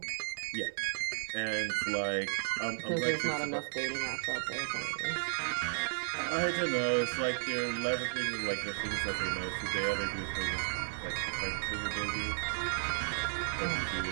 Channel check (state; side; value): silent; left; 55 dB below the other